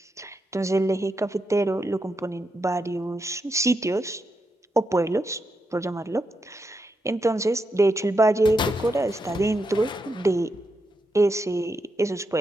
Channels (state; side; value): normal; both; correlation 0.84